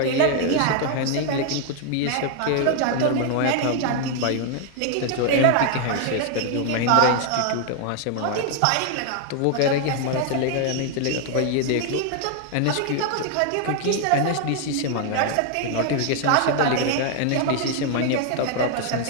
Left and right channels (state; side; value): different; both; correlation 0.00